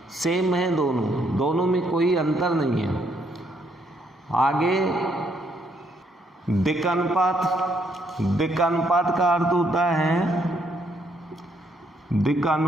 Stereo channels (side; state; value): both; normal; correlation 0.72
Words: सेम है दोनों में कोई अंतर नहीं है। आगे दिक्कानुपात का अर्थ होता है